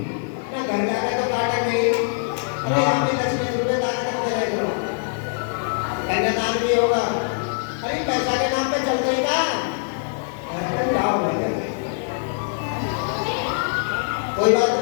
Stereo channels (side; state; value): right; silent; 63 dB below the other